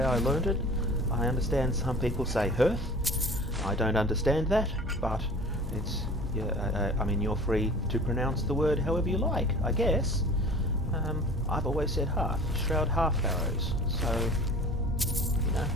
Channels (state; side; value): normal; both; correlation 0.42